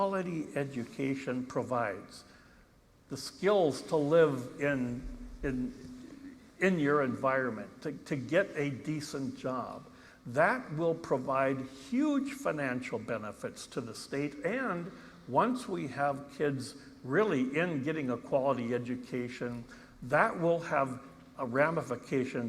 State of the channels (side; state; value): both; identical; correlation 1.00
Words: education provides. The skills to live in your environment, to get a decent job. That will provide huge financial benefits to the state, and once we have kids really in getting a quality education, that will have